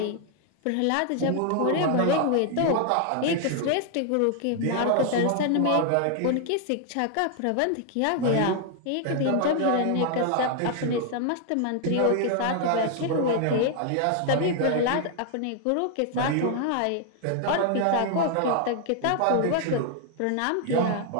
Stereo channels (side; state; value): both; different; correlation 0.00